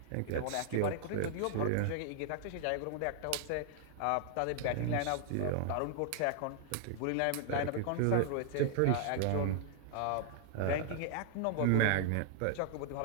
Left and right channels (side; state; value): both; different; correlation 0.00